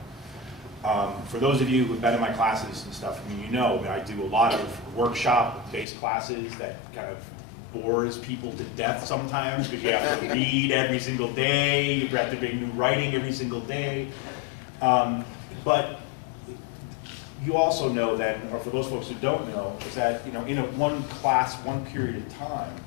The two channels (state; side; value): drops out; right; at 5.9 s